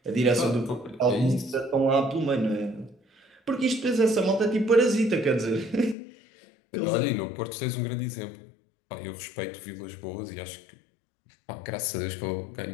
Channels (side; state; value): right; drops out; at 6.0 s